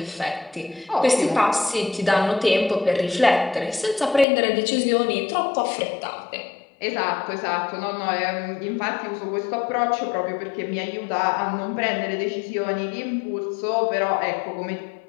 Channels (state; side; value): drops out; right; at 4.2 s